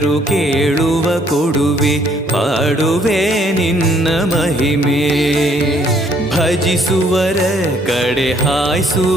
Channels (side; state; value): both; normal; correlation 0.65